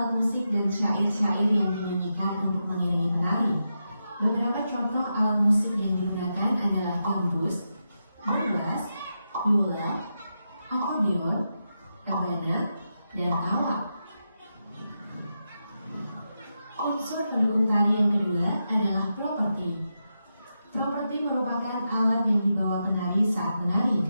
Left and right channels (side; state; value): both; inverted; correlation -0.87